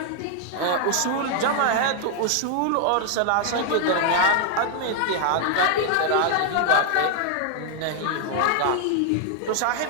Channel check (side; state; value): both; different; correlation 0.00